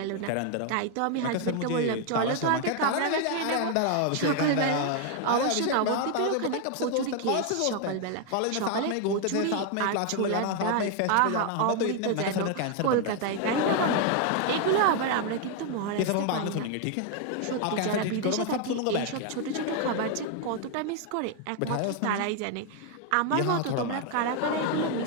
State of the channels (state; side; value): different; both; correlation 0.00